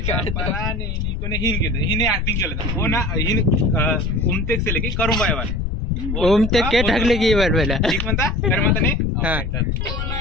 पराने निकोने हिन केलं हिने ऍक्टिंग केलं हो ना हिन उमतेक से लेके करून बायवाले ओम ते के ढकले की बार पहिला ठीक म्हणता तर म्हणता नाही हा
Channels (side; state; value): left; noise; rumble, 3 dB below the sound